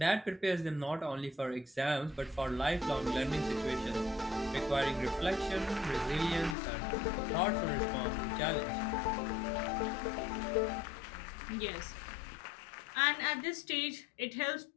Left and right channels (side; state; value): right; drops out; at 6.6 s